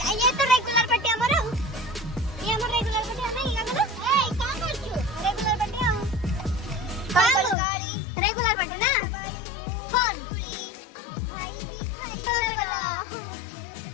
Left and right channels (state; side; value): drops out; right; at 7.6 s